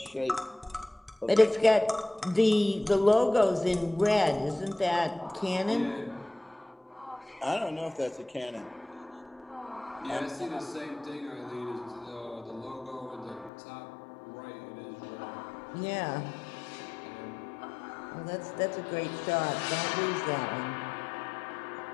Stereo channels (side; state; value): right; drops out; at 13.5 s